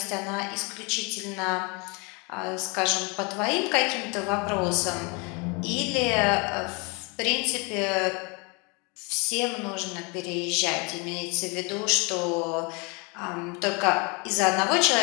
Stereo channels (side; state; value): right; quieter; 30.6 dB